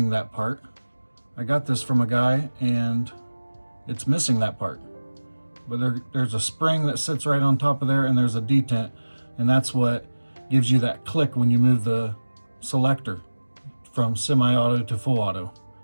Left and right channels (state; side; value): inverted; both; correlation -1.00